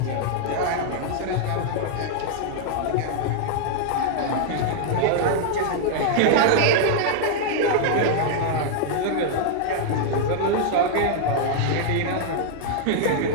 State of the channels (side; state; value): both; different; correlation -0.01